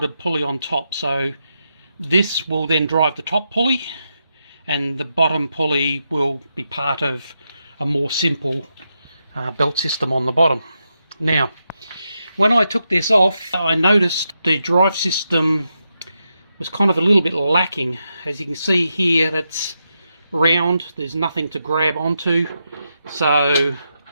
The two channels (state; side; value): inverted; both; correlation -0.85